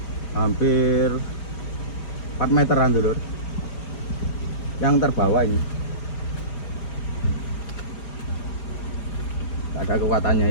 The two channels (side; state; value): right; late; 4.9 ms